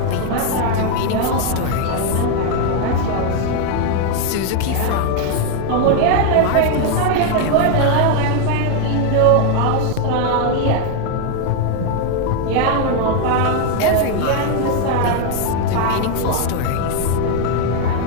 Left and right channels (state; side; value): different; both; correlation 0.00